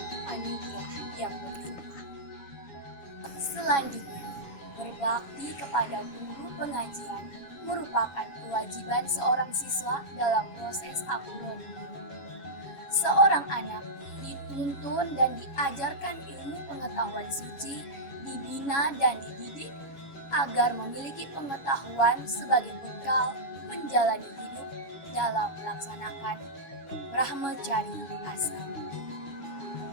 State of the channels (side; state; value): right; late; 7.2 ms